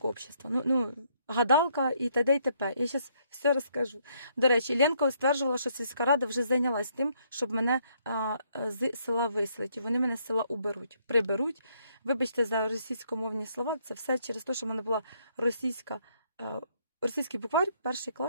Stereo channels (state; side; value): inverted; both; correlation -0.70